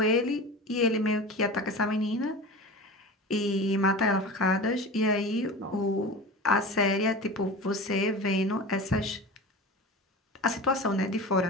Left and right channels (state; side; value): normal; both; correlation 0.32